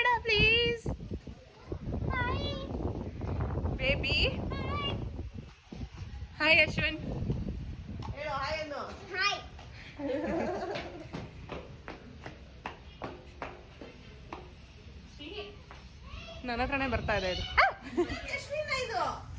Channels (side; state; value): both; identical; correlation 1.00